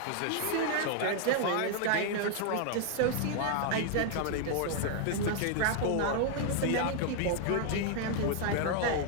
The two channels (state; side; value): different; both; correlation 0.00